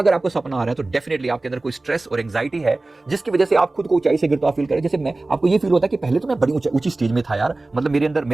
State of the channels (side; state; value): left; quieter; 3.1 dB